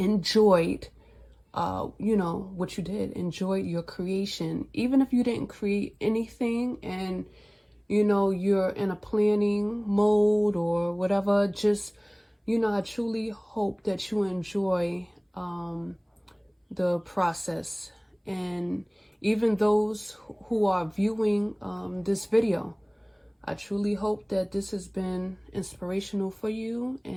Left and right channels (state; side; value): identical; both; correlation 1.00